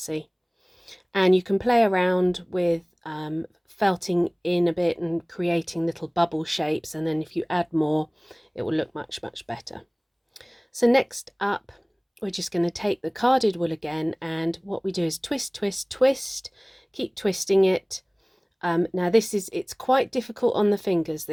And you can play around with felting in a bit and creating little bubble shapes, and then if you add more it will look much better. So next up we're just going to take the carded wool again, and what we do is twist, twist, twist, keep twisting it. Now it's quite difficult on the fingers,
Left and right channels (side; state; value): both; identical; correlation 1.00